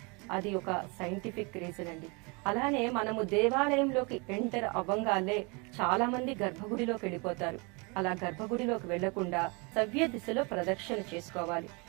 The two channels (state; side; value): quieter; left; 30.2 dB